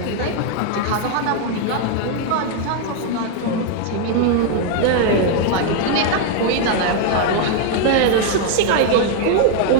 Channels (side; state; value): both; different; correlation 0.00